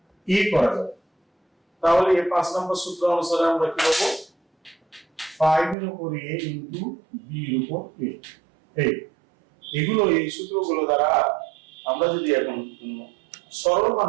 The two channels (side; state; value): left; drops out; at 5.8 s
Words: a করা যায়, তাহলে এই 5 নম্বর সূত্র অনুসারে আমরা কি করব, 5 এর উপর a into b এর উপর a। এগুলো এই সূত্রগুলো দ্বারা আমরা যদি এখন সরল মান